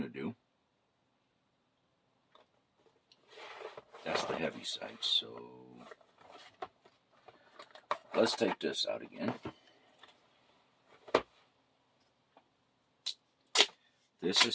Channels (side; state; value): both; identical; correlation 1.00